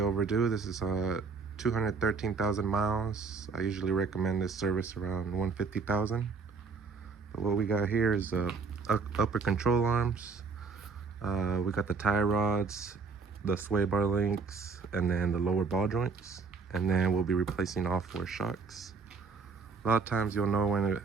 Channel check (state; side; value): quieter; left; 4.9 dB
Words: This is 213,000 miles. I usually recommend this service around 150,000. But what we got here is the upper control arms. We got the tie rods, the sway bar links, and then the lower ball joints. And then we'll be replacing all four shocks. A lot of times you'll know when